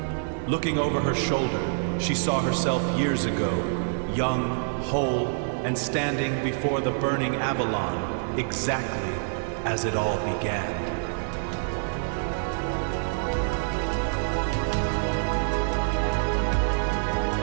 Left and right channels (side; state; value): left; silent; digital silence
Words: Looking over her shoulder, she saw herself years ago, young, whole, and standing before the burning AVALON, exactly as it all began.